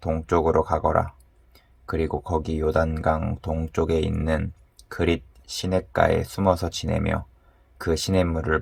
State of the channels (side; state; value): both; identical; correlation 1.00